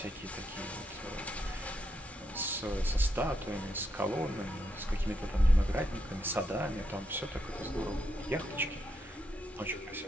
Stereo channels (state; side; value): normal; both; correlation 0.80